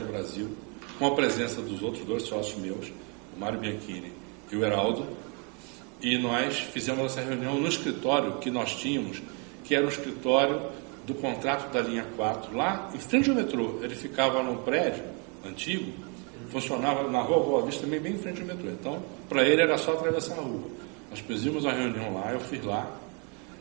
Brasil, com a presença dos outros dois sócios meus, o Mário Bianchini e o Heraldo, e nós fizemos essa reunião no escritório que nós tínhamos, que era o escritório do contrato da linha 4, lá em frente ao metrô. Ele ficava num prédio antigo, funcionava na rua Boa Vista, também bem em frente ao metrô. Então, para ele era só atravessar a rua. Nós fizemos a reunião lá, eu fui lá,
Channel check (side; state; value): left; quieter; 35.0 dB